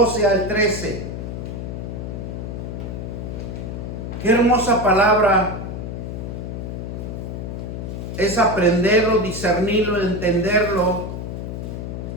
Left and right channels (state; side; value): noise; left; hum, 6 dB below the sound